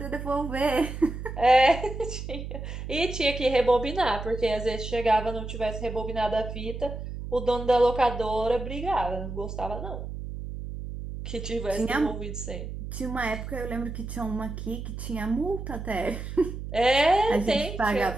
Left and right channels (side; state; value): right; noise; hum, 7 dB below the sound